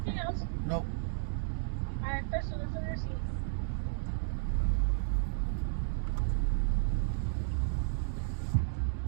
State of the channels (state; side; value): silent; left; digital silence